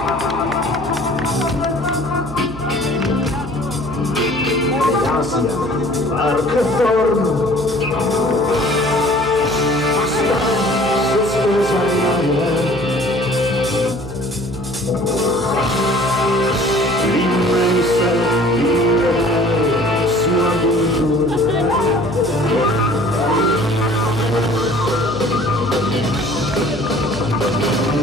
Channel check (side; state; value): right; noise; hum, 12 dB below the sound